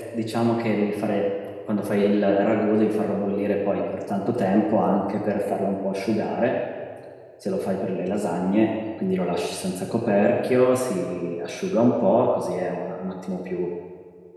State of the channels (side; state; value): both; identical; correlation 1.00